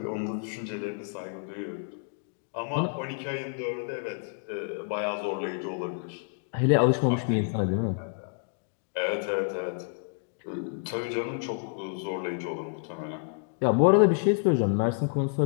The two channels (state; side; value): silent; right; 58 dB below the other